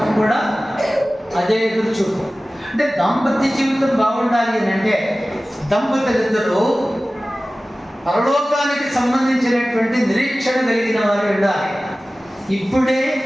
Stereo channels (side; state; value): both; normal; correlation 0.97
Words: కూడా అదే ఎదురు చూపు. అంటే దాంపత్య జీవితం బాగుండాలి అని అంటే దంపతులిద్దరూ పరలోకానికి సంబంధించినటువంటి నిరీక్షణ కలిగిన వారు ఉండాలి. ఇప్పుడే